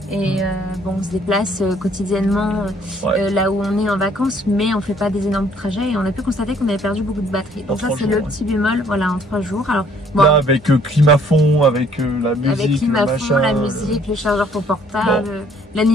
Et bon, on se déplace quotidiennement là où on est en vacances, mais on fait pas des énormes trajets et on a pu constater qu'on avait perdu beaucoup de batterie. Donc ça c'est le petit bémol, voilà, en 3 jours. Alors bon, là avec climat fond, avec la musique, avec climat fond, la musique, le chargeur pour portable,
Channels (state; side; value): normal; both; correlation 0.61